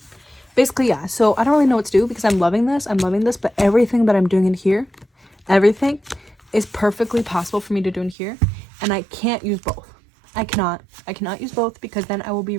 basically, yeah. So I don't really know what to do because I'm loving this, but everything that I'm doing in here, everything is perfectly possible for me to do in here, and I can't use both. I cannot use both because then I will be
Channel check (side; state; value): left; drops out; at 8.2 s